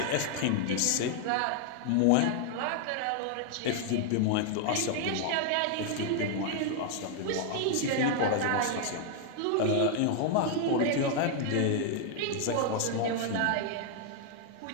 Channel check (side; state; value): both; different; correlation 0.00